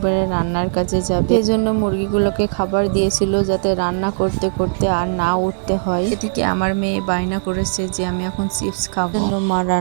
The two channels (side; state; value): left; silent; digital silence